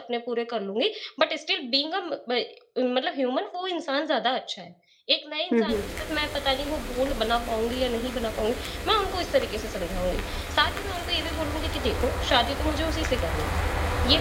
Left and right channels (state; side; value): identical; both; correlation 1.00